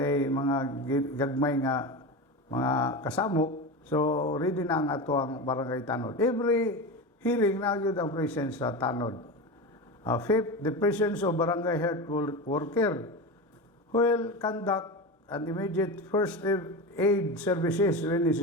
mga gagmay nga mga kasamok, so ready na ang ato ang barangay tanod. Every hearing na yun ang presence sa tanod. Fifth, the presence of barangay health worker who will conduct an immediate first aid services when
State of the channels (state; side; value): normal; both; correlation 0.23